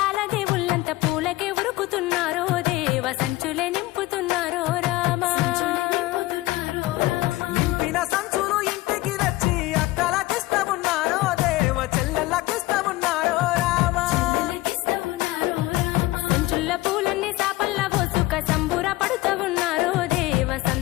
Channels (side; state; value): right; quieter; 18.4 dB